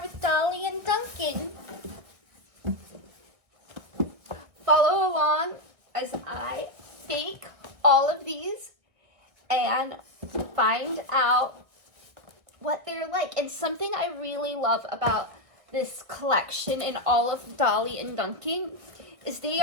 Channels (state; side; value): late; left; 1.8 ms